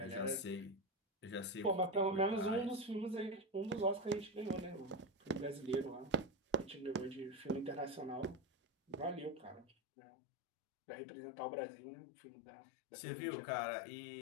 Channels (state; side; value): drops out; right; at 9.8 s